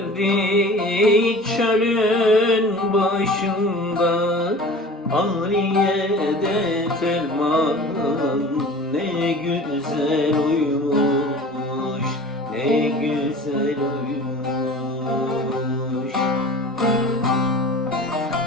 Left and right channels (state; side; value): normal; both; correlation 0.41